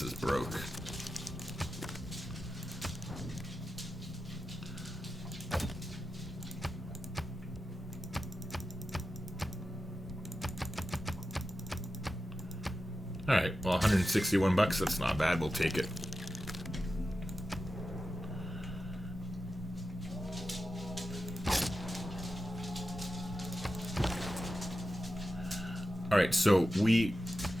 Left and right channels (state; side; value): normal; both; correlation 0.92